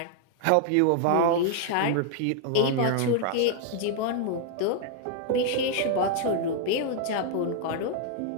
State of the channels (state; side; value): different; both; correlation 0.00